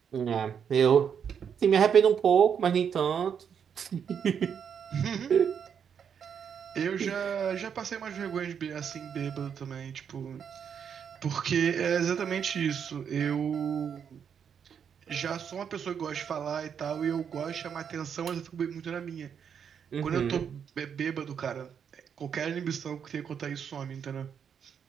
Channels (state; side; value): quieter; left; 7.6 dB